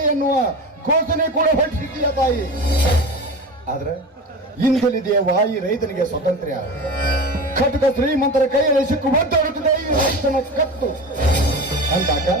ಎನ್ನುವ ಘೋಷಣೆ ಕೂಡ ಹೊರಟಿದ್ದೀಯ ತಾಯಿ. ಆದ್ರೆ ಇಂದಲಿದೆಯವ್ವ ಈ ರೈತನಿಗೆ ಸ್ವಾತಂತ್ರ್ಯ. ಖಡ್ಗ ಶ್ರೀಮಂತರ ಕೈಯಲ್ಲಿ ಸಿಕ್ಕು ಒದ್ದಾಡುತ್ತಿದೆ ಈ ರೈತನ ಕತ್ತು ಅಂದಾಗ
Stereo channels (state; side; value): normal; both; correlation 0.29